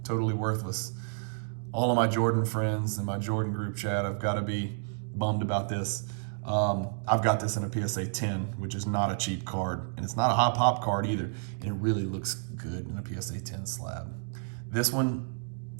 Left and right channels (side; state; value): left; silent; digital silence